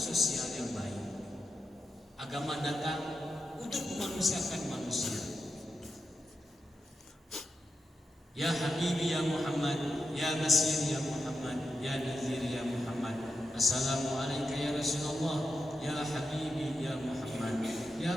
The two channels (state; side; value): normal; both; correlation 0.88